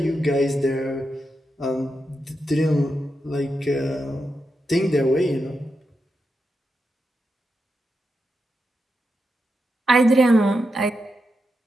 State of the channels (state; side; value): normal; both; correlation 0.86